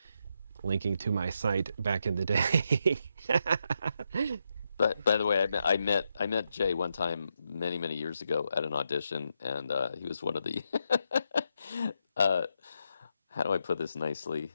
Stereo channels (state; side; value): inverted; both; correlation -0.82